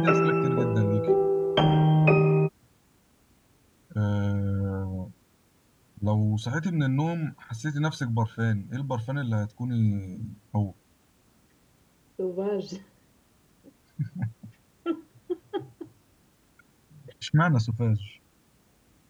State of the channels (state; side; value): identical; both; correlation 1.00